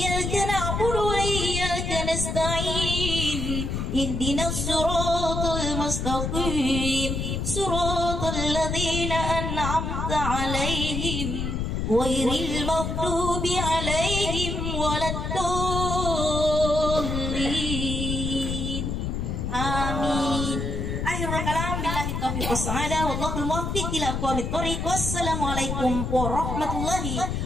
na'budu wa iyyaka nasta'in. Ihdinas siratal mustaqim. Siratal ladzina an'amta 'alaihim ghairil maghdubi 'alaihim waladdallin. Amin. Akhirul kalam billahi taufiq wassadah wallahul muwaffiq ila aqwamit thoriq. Wassalamualaikum warahmatullahi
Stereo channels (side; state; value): left; noise; rumble, 2 dB below the sound